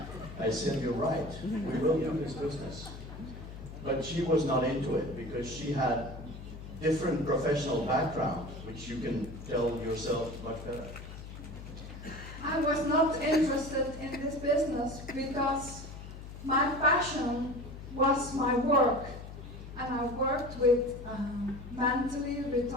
I said, "You're right. We will do this business." But she was not into it because she had different professional background, which you can tell yourself much better. I was not interested in this business because my passion was my work, and I worked with mentally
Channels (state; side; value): noise; left; hum, 12 dB below the sound